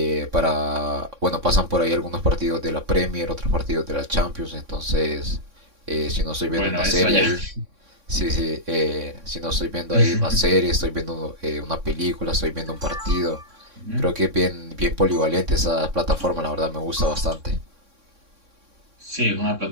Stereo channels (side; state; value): left; late; 3.6 ms